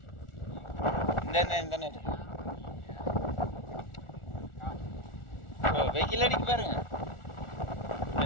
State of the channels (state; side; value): late; right; 1.4 ms